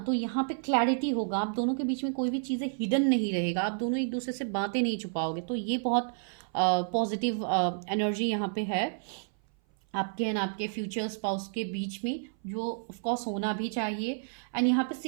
यहाँ पे क्लैरिटी होगा। आप दोनों के बीच में कोई भी चीज़ें हिडन नहीं रहेगा, आप दोनों एक दूसरे से बातें नहीं छुपाओगे। तो ये बहुत पॉजिटिव एनर्जी यहाँ पे है आपके एंड आपके फ्यूचर स्पाउस के बीच में, जो ऑफकोर्स होना भी चाहिए। एंड यहाँ पे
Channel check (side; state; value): left; silent; 57 dB below the other